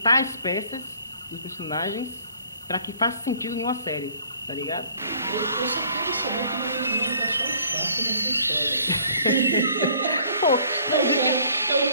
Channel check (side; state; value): both; inverted; correlation -0.58